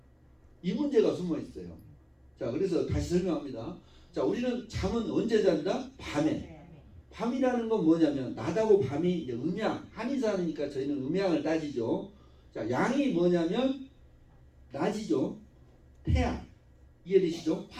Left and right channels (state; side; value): identical; both; correlation 1.00